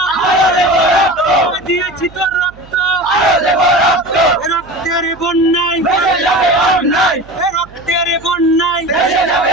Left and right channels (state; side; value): noise; right; hum, 23 dB below the sound